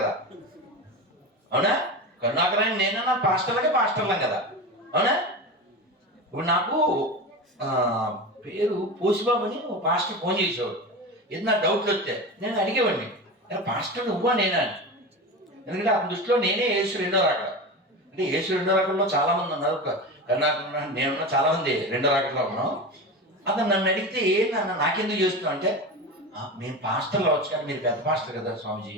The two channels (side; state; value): both; normal; correlation 0.26